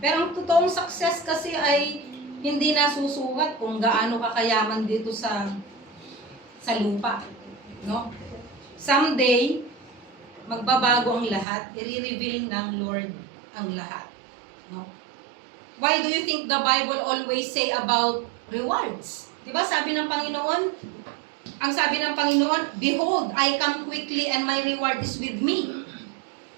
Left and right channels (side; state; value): left; drops out; at 11.5 s